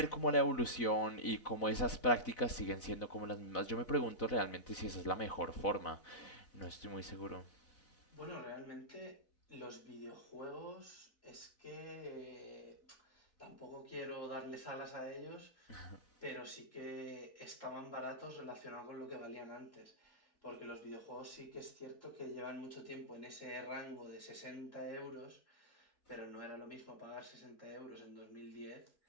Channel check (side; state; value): right; late; 4.0 ms